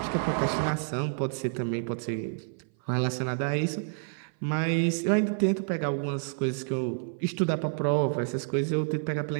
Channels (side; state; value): left; silent; 57 dB below the other